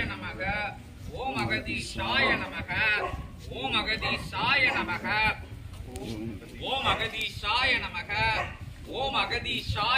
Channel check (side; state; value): both; identical; correlation 1.00